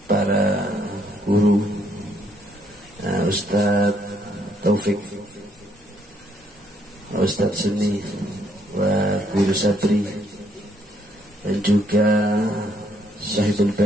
para guru, Ustaz Taufik, Ustaz Seni, wa Guru Sabri, dan juga Sahibul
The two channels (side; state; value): both; normal; correlation 0.70